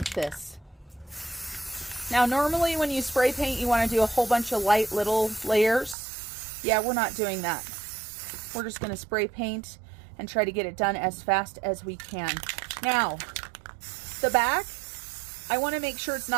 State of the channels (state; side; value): drops out; left; at 6.0 s